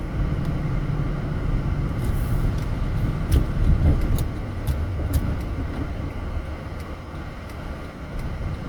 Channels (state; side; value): identical; both; correlation 1.00